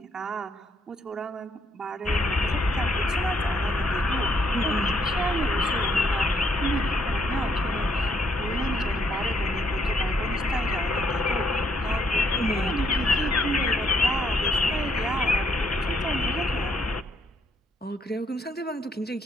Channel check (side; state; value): both; normal; correlation 0.71